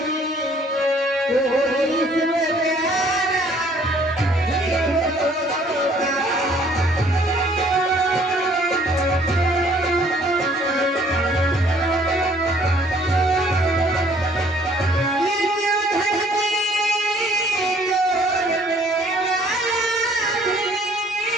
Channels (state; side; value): normal; both; correlation 0.59